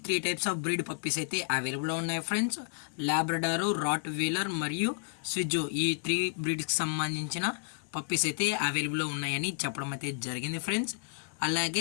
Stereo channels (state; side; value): silent; right; 57 dB below the other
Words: 3 టైప్స్ ఆఫ్ బ్రీడ్ పప్పీస్ అయితే అవైలబుల్లో ఉన్నాయి ఫ్రెండ్స్. లాబ్రడారు, రాట్ వీలర్ మరియు స్విజ్జు, ఈ 3 బ్రీడ్స్కి సంబంధించిన పప్పీస్ అయితే అవైలబుల్లో ఉన్నాయని చెప్పడం అయితే జరిగింది ఫ్రెండ్స్.